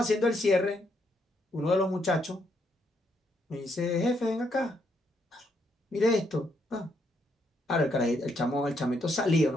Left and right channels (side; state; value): both; normal; correlation 0.75